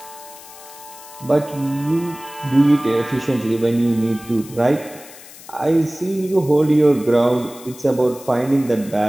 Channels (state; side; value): noise; left; hiss, 18 dB below the sound